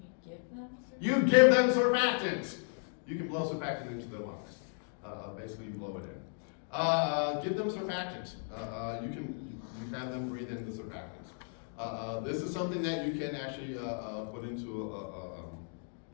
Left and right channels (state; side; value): silent; right; 55 dB below the other